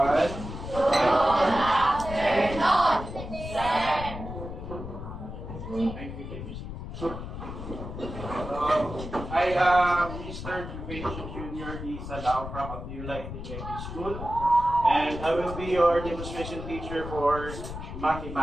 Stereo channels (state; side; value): noise; left; rumble, 9 dB below the sound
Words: I am Mr. Juvencio Jr. D. Salao from Abdullah Integrated School, and I will be your demonstration teacher for